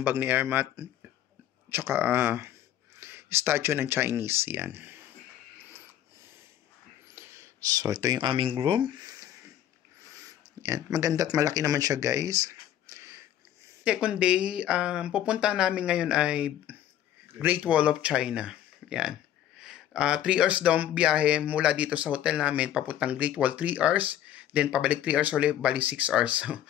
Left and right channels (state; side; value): quieter; right; 11.5 dB